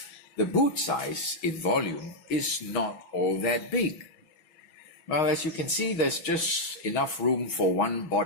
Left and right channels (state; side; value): late; right; 6.3 ms